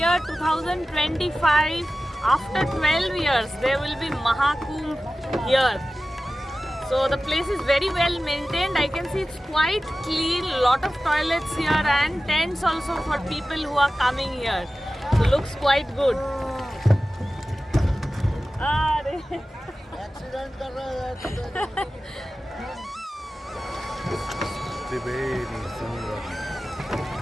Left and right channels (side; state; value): both; normal; correlation 0.95